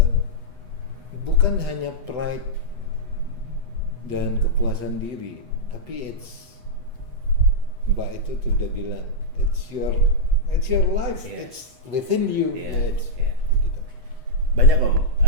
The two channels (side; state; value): left; late; 8.1 ms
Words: bukan hanya pride dan kepuasan diri, tapi Mbak itu sudah bilang it's your life, Yeah. it's within you. Iya. It's, Iya. gitu. Banyak Om